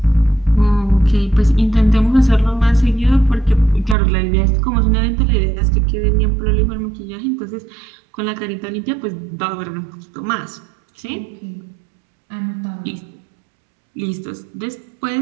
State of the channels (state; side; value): drops out; left; at 4.0 s